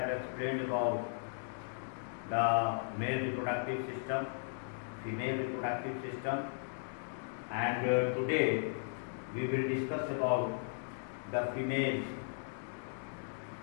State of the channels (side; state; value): right; silent; digital silence